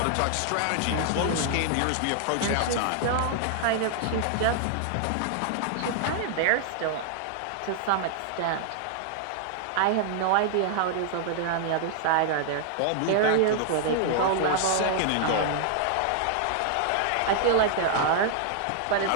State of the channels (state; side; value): different; both; correlation 0.00